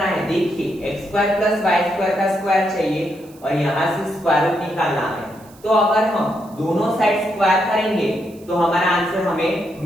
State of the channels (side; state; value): right; noise; hiss, 26 dB below the sound